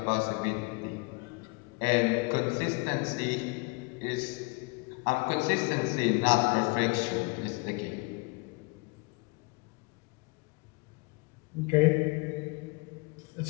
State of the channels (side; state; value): right; quieter; 29.4 dB